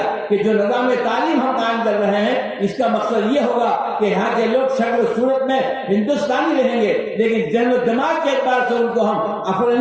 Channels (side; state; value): both; identical; correlation 1.00